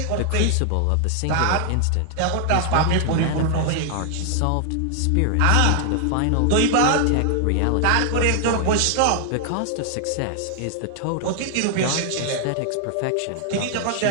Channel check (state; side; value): different; both; correlation 0.00